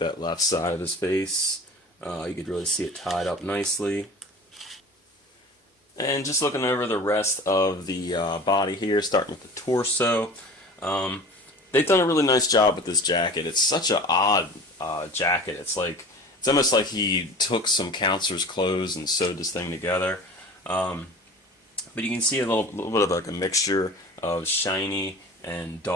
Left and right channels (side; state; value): both; normal; correlation 0.39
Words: left side of his face. You could really see it tied up nicely. And just looking over the rest of the body here, starting with the torso. They've done a really nice job with this jacket. It's such an odd jacket. It's almost like he took some counselor's clothes and sewed this thing together. But you can see a little bit of like a mixture of shiny and